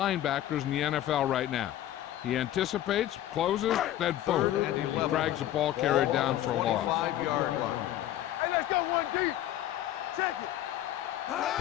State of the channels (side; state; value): right; quieter; 12.9 dB